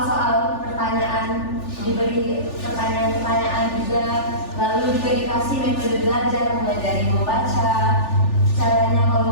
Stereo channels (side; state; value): right; late; 3.4 ms